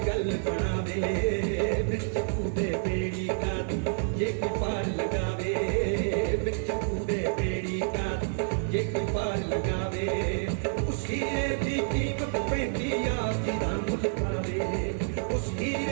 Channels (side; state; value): left; silent; 59 dB below the other